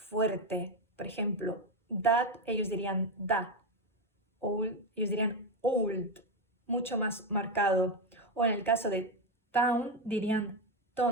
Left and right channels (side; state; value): both; normal; correlation 0.09